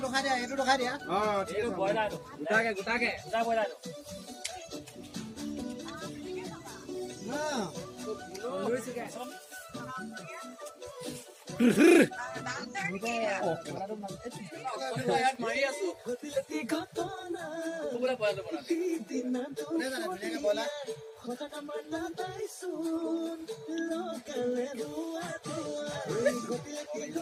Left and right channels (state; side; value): identical; both; correlation 1.00